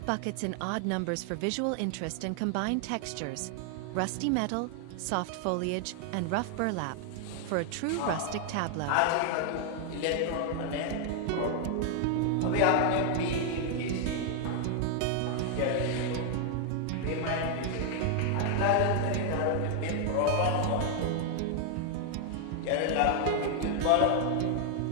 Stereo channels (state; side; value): different; both; correlation 0.00